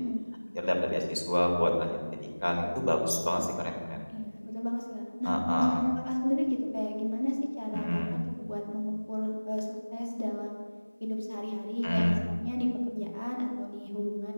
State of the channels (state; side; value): inverted; both; correlation -1.00